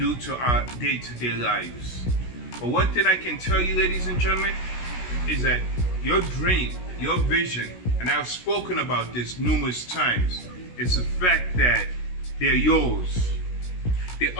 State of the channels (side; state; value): right; late; 16 ms